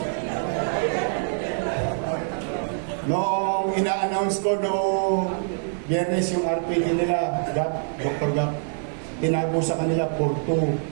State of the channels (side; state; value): left; silent; digital silence